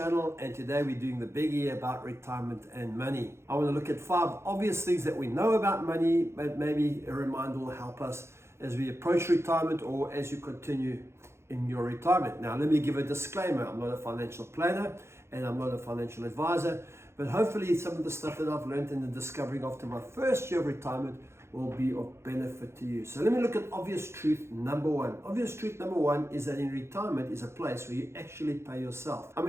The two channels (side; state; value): left; late; 0.13 ms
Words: and today we're doing the biggie about retirement and money. I want to look at 5 obvious things that we know about money, but maybe a reminder will help us as we approach retirement or as you continue in your retirement. Now, let me give a disclaimer. I'm not a financial planner and I'm not a financial advisor, but hopefully some of the stuff that I've learned in the discovering after my first year of retirement will be of benefit to you. So let me look at obvious truth number 1. Obvious truth number 1 is that in retirement is a place where you actually pay yourself. I